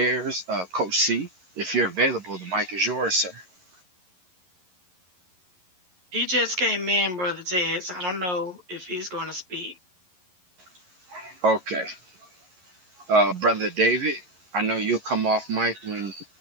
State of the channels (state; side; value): late; left; 11 ms